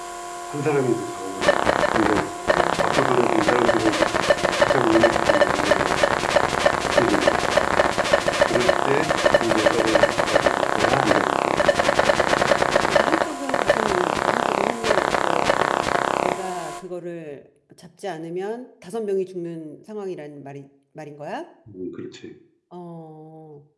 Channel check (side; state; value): both; identical; correlation 1.00